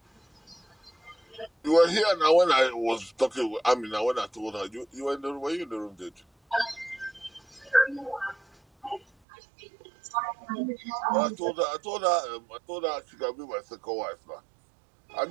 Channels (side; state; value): left; drops out; at 9.1 s